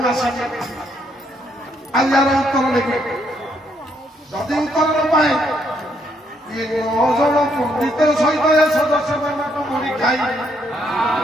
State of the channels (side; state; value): both; normal; correlation 0.73